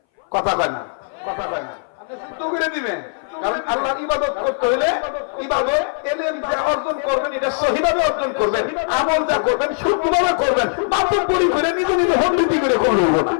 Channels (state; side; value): silent; right; 61 dB below the other